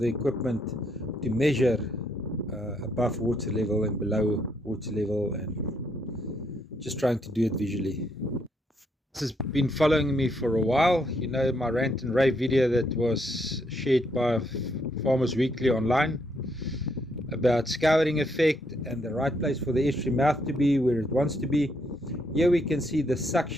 equipment to measure above water level and below water level, and just trying to do it visually. This has been following me for a while. You know, my rant and rave video that was shared by Farmers Weekly online about scouring effect and the right place for the estuary mouth to be where it wants to be. Here we can see the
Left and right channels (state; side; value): normal; both; correlation 0.74